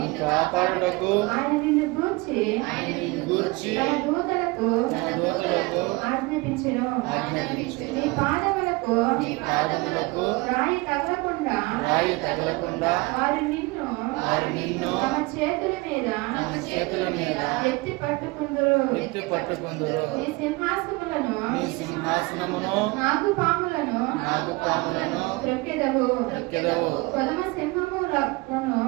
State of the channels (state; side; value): quieter; left; 24.0 dB